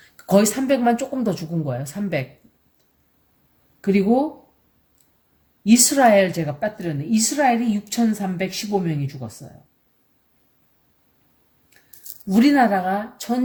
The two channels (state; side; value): identical; both; correlation 1.00